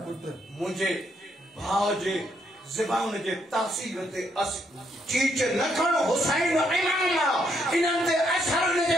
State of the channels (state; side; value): normal; both; correlation 0.74